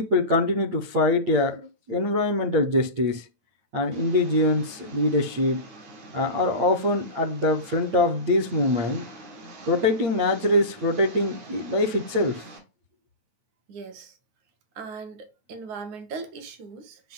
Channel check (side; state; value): left; late; 8.8 ms